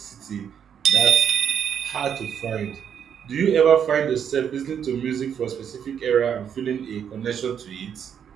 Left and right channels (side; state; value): left; quieter; 8.2 dB